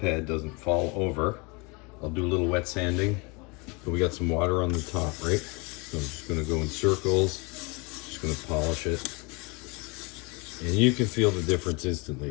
doesn't fall over, I'll do a little wet sanding. So we got some water on the top, right? So I'm just gonna go in circles, just gonna polish it. And you can feel the difference instantly.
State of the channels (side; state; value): right; quieter; 29.1 dB